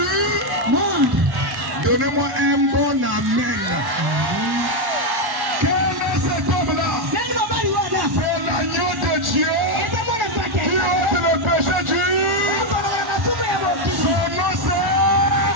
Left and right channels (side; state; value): left; late; 1.1 ms